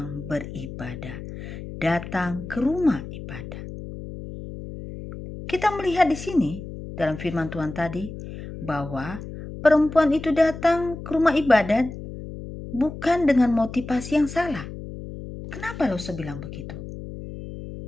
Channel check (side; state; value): left; noise; hum, 11 dB below the sound